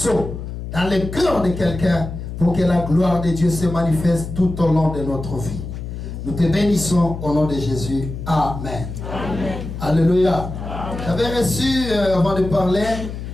dans le cœur de quelqu'un pour que la gloire de Dieu se manifeste tout au long de notre vie. Nous te bénissons au nom de Jésus. Amen. Amen. Alléluia. J'avais reçu, avant de parler,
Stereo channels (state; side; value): noise; left; hum, 8 dB below the sound